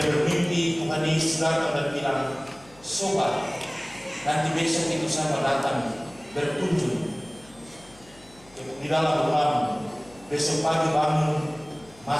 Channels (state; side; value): noise; left; hum, 25 dB below the sound